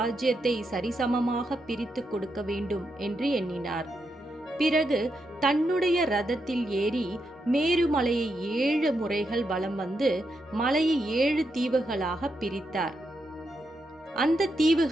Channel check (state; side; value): normal; both; correlation 0.83